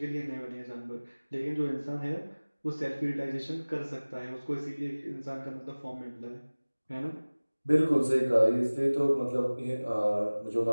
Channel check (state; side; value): inverted; both; correlation -1.00